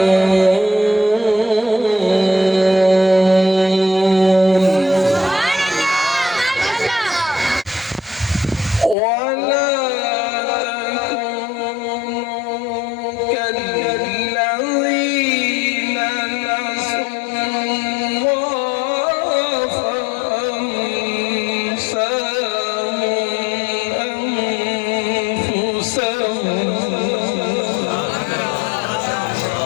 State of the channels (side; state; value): right; drops out; at 9.0 s